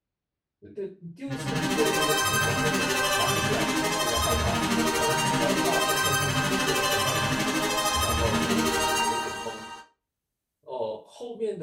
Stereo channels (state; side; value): identical; both; correlation 1.00